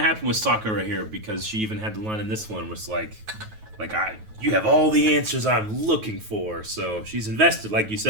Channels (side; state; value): left; late; 9.3 ms